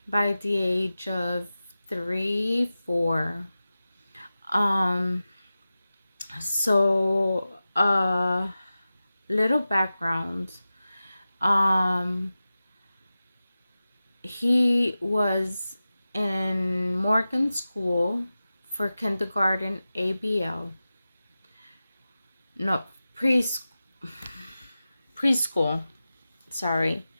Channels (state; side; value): inverted; both; correlation -0.95